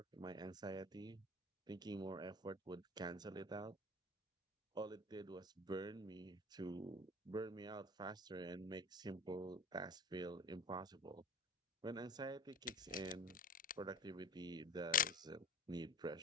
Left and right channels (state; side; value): normal; both; correlation 0.37